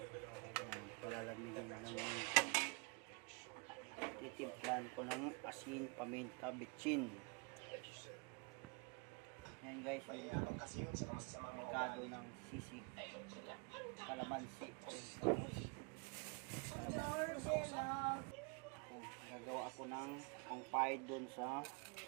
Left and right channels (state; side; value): quieter; left; 31.6 dB